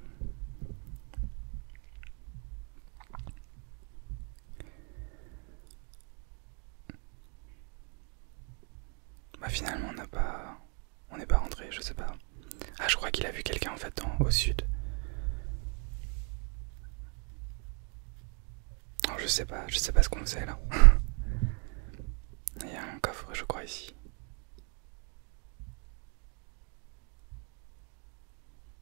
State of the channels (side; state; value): left; quieter; 38.3 dB